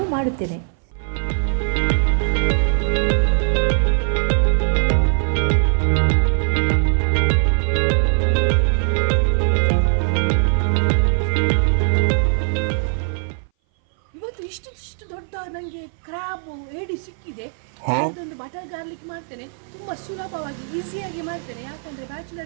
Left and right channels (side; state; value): left; silent; 59 dB below the other